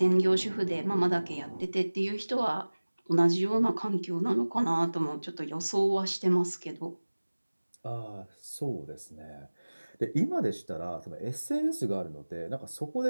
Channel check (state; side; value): inverted; both; correlation -1.00